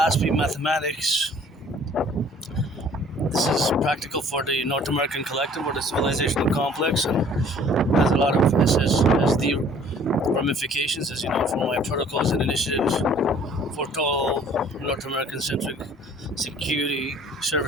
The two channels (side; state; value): both; normal; correlation 0.54